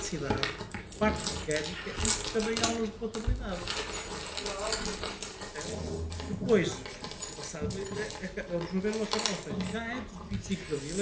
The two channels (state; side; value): identical; both; correlation 1.00